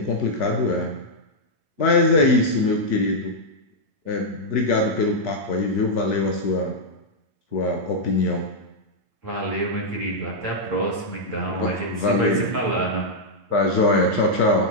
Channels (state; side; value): late; left; 8.6 ms